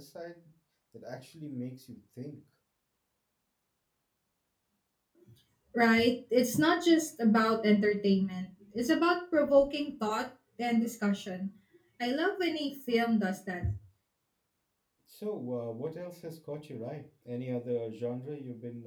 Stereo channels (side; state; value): both; identical; correlation 1.00